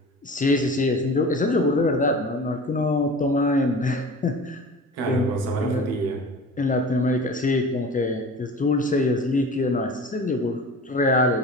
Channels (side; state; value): both; normal; correlation 0.38